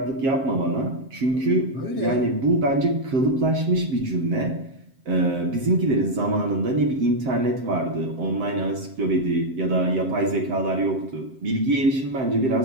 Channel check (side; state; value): left; late; 7.6 ms